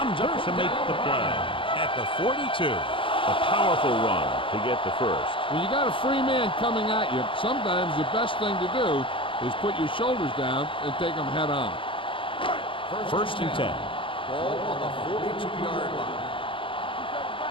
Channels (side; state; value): right; late; 0.25 ms